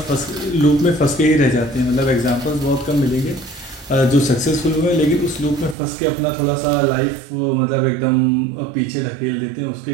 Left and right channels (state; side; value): drops out; left; at 5.8 s